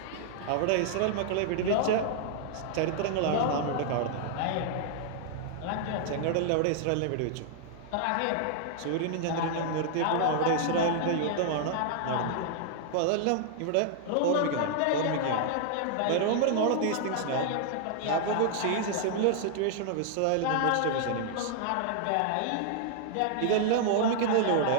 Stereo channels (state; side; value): different; both; correlation -0.01